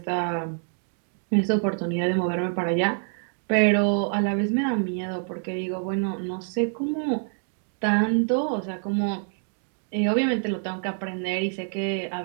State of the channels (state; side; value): silent; left; 56 dB below the other